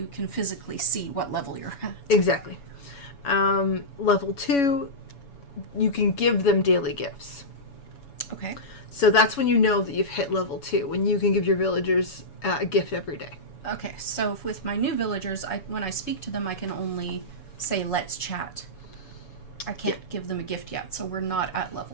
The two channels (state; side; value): late; right; 7.1 ms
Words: can physically see what level you're at. Exactly. Level 2, you can give them daily gifts. Okay. So that's when you know that you've hit level 2, when you can give your villagers a gift every day. Okay, so with my new villagers, when I speak to them, I can only say, let's chat. I can't give them a gift yet, so we're not at